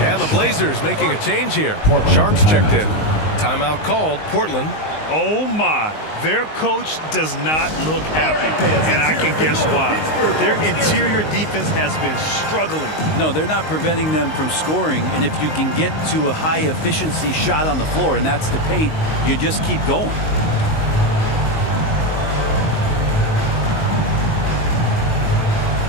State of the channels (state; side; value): late; right; 19 ms